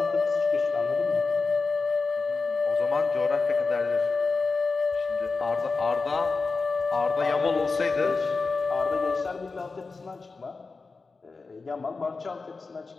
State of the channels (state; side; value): quieter; right; 4.2 dB